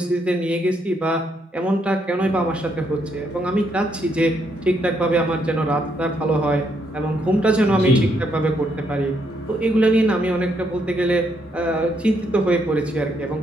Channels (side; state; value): both; normal; correlation 0.75